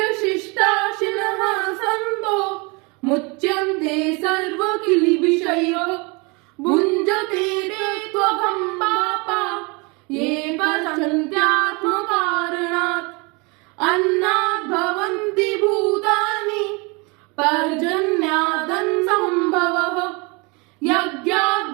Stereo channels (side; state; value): left; quieter; 29.0 dB